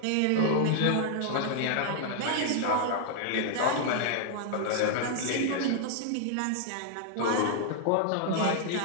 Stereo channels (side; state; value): both; different; correlation 0.00